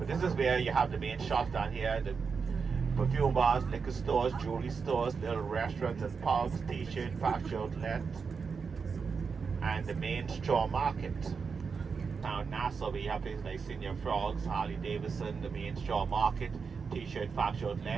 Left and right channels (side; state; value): left; quieter; 5.5 dB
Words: this is where you have the main shops down here, the perfume bars, liquor stores, jewelry stores, little restaurants and pubs, t-shirt, factory outlet, and the main straw market. Now in Nassau, we have places like Senior Frogs, Harley Davidson, the main straw market, t-shirt, factory